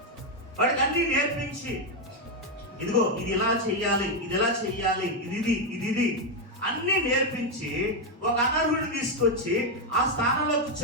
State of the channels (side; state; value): both; normal; correlation 0.04